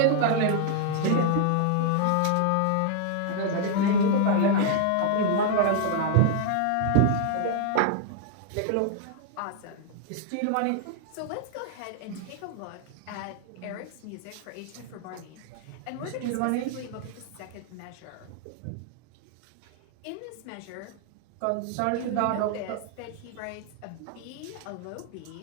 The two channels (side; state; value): both; different; correlation 0.00